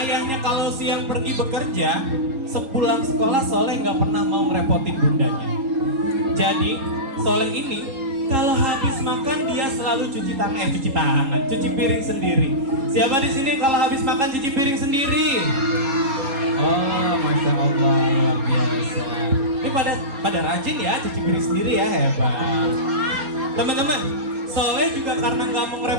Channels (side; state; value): left; late; 4.3 ms